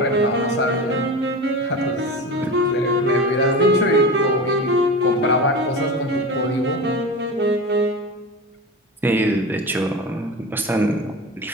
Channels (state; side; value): normal; both; correlation 0.28